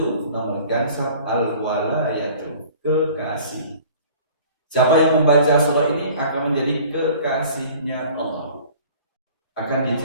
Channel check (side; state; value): both; inverted; correlation -0.48